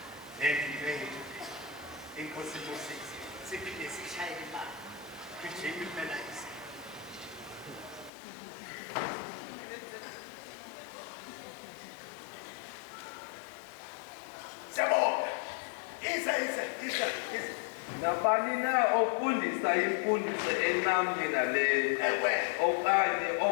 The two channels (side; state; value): right; drops out; at 8.1 s